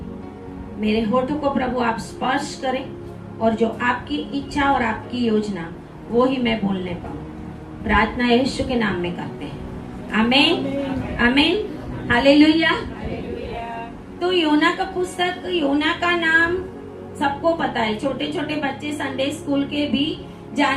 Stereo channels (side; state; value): both; identical; correlation 1.00